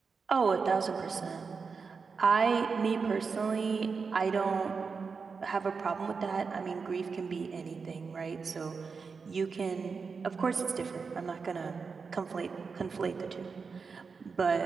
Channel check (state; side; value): quieter; left; 5.1 dB